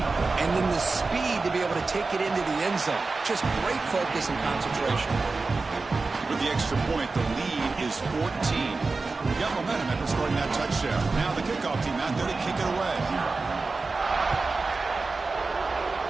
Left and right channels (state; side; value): quieter; left; 3.9 dB